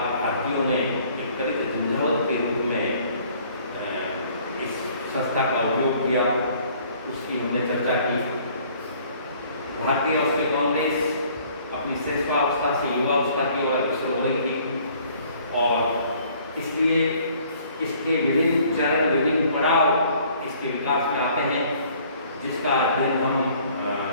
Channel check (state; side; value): inverted; both; correlation -0.57